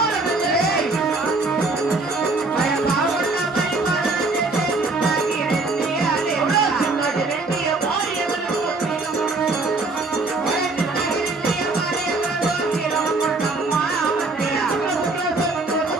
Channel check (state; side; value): quieter; left; 3.4 dB